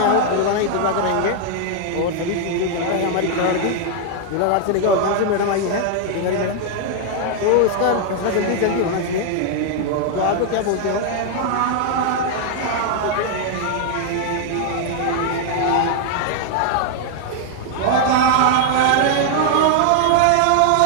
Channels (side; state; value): both; different; correlation 0.00